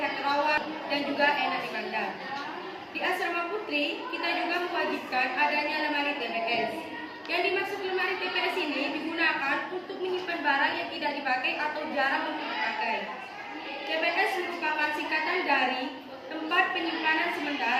rawat dan juga enak dipandang. Di Asrama Putri, kita juga mewajibkan adanya lemari TPS. Yang dimaksud lemari TPS ini digunakan untuk menyimpan barang yang tidak dipakai atau jarang untuk dipakai. TPS merupakan singkatan dari tempat penyimpanan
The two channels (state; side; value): identical; both; correlation 1.00